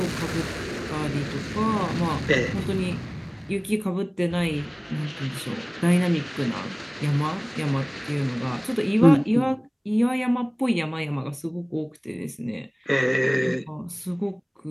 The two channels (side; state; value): both; identical; correlation 1.00